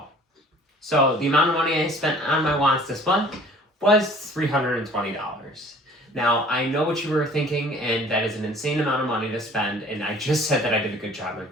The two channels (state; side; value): normal; both; correlation 0.51